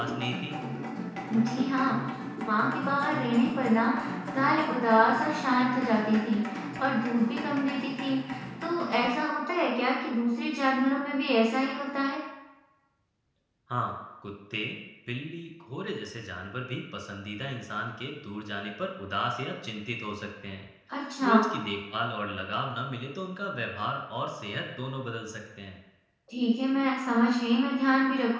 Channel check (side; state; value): both; identical; correlation 1.00